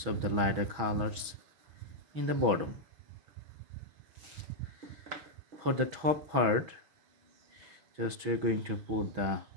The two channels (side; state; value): left; late; 6.2 ms